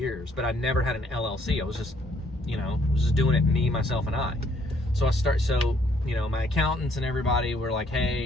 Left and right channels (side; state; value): both; normal; correlation 0.66